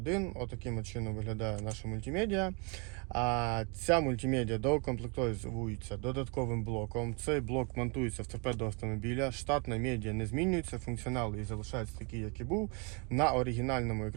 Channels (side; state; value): left; quieter; 33.6 dB